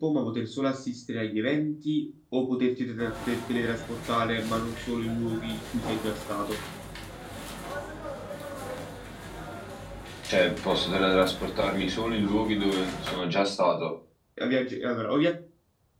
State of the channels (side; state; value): both; identical; correlation 1.00